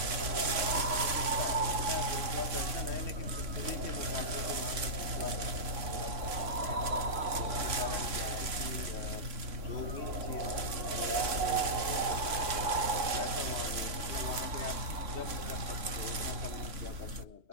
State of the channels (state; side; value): late; left; 3.0 ms